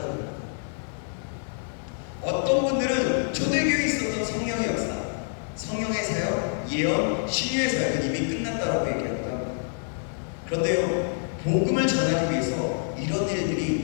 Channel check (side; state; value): right; silent; digital silence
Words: 어떤 분들은 초대교회에 있었던 성령의 역사, 성령의 사역, 예언, 신유의 사역은 이미 끝났다고 얘기합니다. 그런데요, 복음을 전하기 위해서 이런